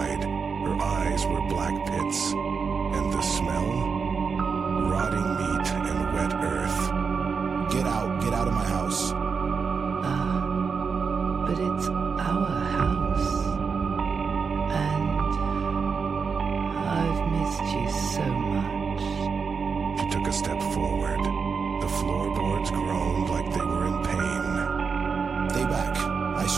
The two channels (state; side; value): quieter; left; 5.5 dB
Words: Her eyes were black pits. And the smell? Rotting meat and wet earth. Get out of my house. But it's our house. And I've missed you so much. She took a step forward. The floorboards groaned like they were in pain. Stay back. I